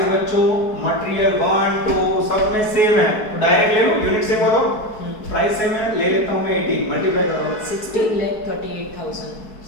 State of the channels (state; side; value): late; right; 4.6 ms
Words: बच्चों मटेरियल 1 2 सब में सेम है, तो डायरेक्ट ले लो, यूनिट सेम हो तो प्राइस सेम है, ले लेता हूं मैं 18 मल्टीप्लाई करो 16,38,000